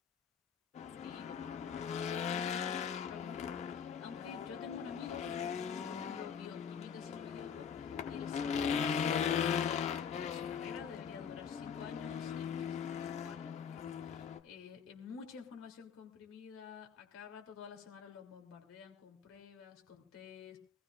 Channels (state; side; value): quieter; right; 7.2 dB